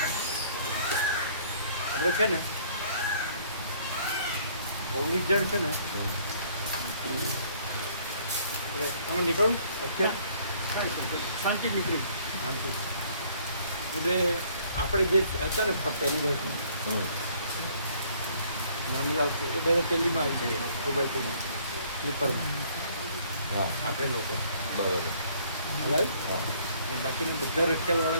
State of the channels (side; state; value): both; inverted; correlation -0.60